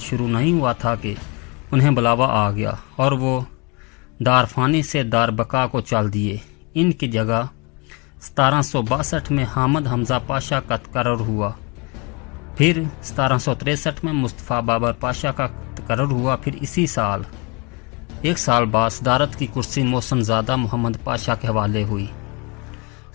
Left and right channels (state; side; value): quieter; right; 29.6 dB